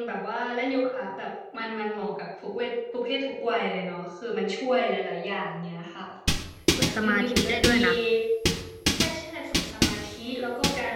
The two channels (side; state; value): both; identical; correlation 1.00